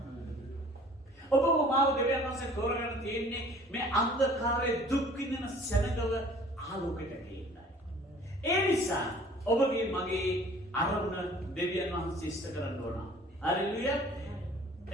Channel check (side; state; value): both; normal; correlation 0.50